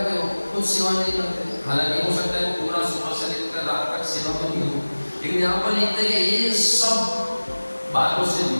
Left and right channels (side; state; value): both; inverted; correlation -1.00